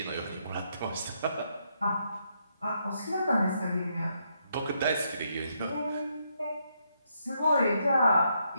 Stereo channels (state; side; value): inverted; both; correlation -0.77